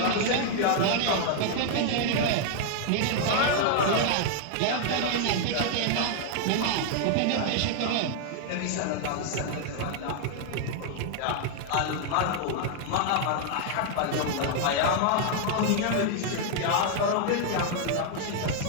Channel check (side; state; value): both; different; correlation 0.00